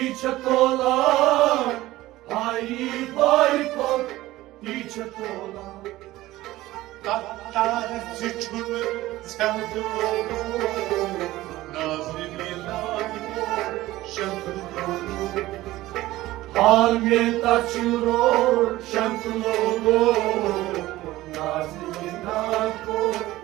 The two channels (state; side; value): quieter; left; 16.9 dB